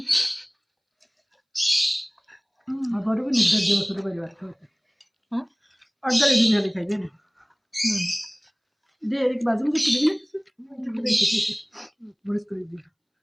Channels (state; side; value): identical; both; correlation 1.00